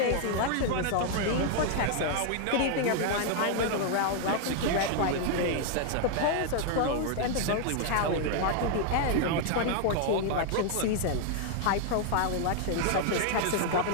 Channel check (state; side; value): different; both; correlation 0.00